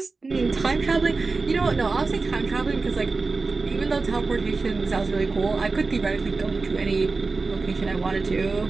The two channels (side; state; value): left; quieter; 4.0 dB